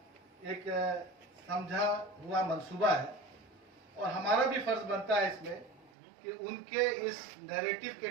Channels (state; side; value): drops out; left; at 5.9 s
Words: एक समझा हुआ मंसूबा है। और हमारा भी फर्ज बनता है इसमें कि उनके इस नैरेटिव के